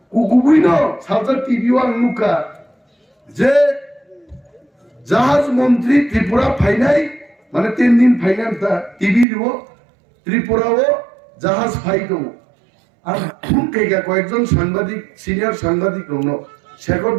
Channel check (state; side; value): drops out; left; at 9.2 s